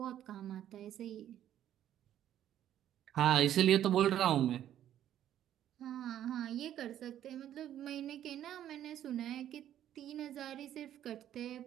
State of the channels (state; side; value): quieter; left; 11.3 dB